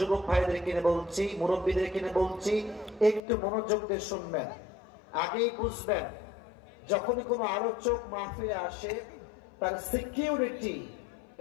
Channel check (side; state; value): right; drops out; at 3.2 s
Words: ভাইদের কিনে বলছি, মুরব্বীদের কিনে বলছি, একটু মনোযোগ দিয়ে শুনবেন। আগেই বুঝবেন যখনই কোনো আলোচক মাহফিলে আসে তার সিকিউরিটি